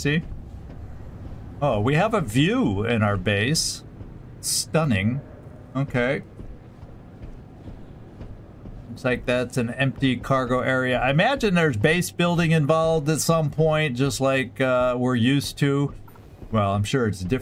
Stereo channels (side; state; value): both; identical; correlation 1.00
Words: Oh, we have a view in our base. Stunning. Okay. Looks like that's an empty cargo area. I imagine there's base building involved at some point, just like we're used to. Well, I'm sure it's